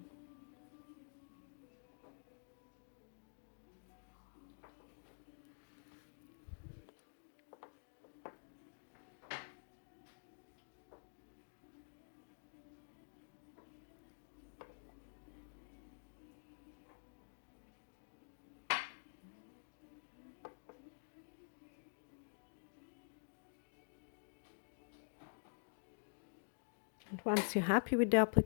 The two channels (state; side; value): silent; right; digital silence